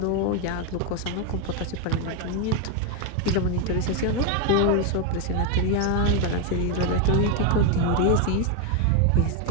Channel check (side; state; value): both; different; correlation 0.01